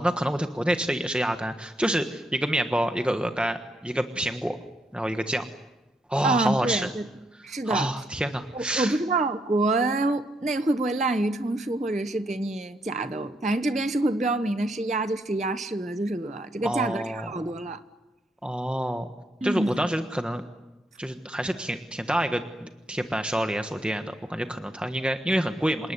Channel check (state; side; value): normal; both; correlation 0.77